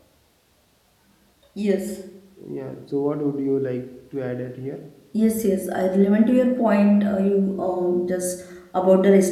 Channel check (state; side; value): identical; both; correlation 1.00